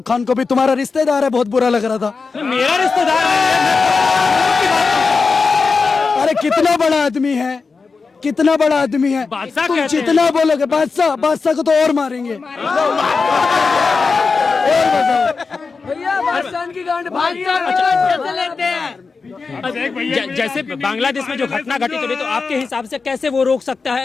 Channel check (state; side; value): quieter; right; 4.6 dB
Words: खान को भी, तुम्हारा रिश्तेदार है, बहुत बुरा लग रहा था। मेरा रिश्तेदार है। अरे कितना बड़ा आदमी है, कितना बड़ा आदमी है। बादशाह तुम कहते हैं। जितना बोलोगे बादशाह, बादशाह को तो और मारेंगे। जैसे बांग्लादेश में जो घटना घटित हो रही, तो आपके हिसाब से कैसे वो रोक सकता